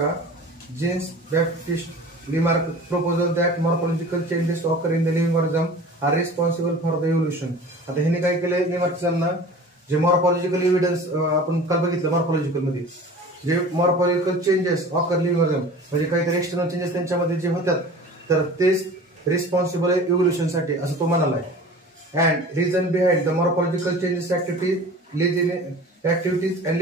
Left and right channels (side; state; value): both; normal; correlation 0.41